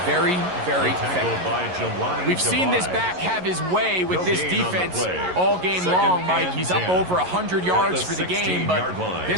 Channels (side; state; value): left; late; 11 ms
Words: very, very effective. We've seen this back have his way with this defense all game long, Mike. He's up over 100 yards for the game, but